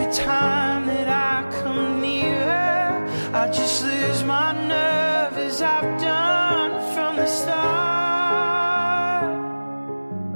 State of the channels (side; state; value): both; inverted; correlation -1.00